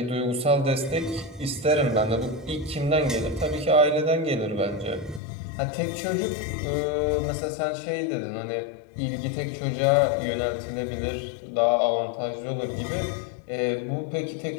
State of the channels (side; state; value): right; drops out; at 5.2 s